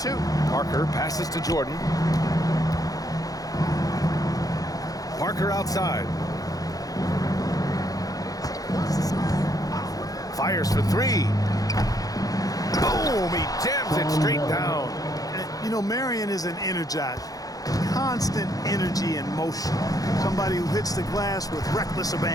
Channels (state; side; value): late; right; 0.17 ms